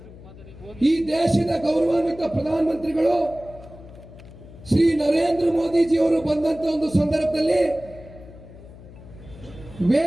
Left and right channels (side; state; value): left; noise; hum, 18 dB below the sound